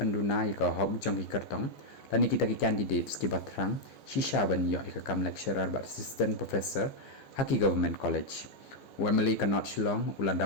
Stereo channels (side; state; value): right; late; 15 ms